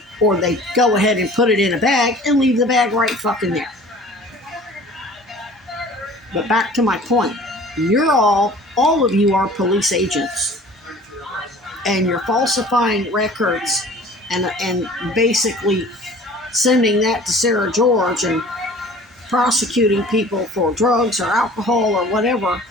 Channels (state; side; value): normal; both; correlation 0.46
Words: Or they go ahead and put it in a bag and leave the bag right fucking there. But back to my point. All of you are police agents. And you're falsifying records and basically sending that to Sarah George and prosecuting people for drugs or alcohol or whatever,